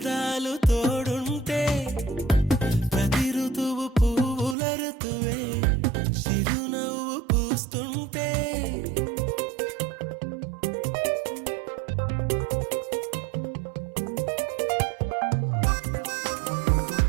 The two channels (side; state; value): left; drops out; at 4.5 s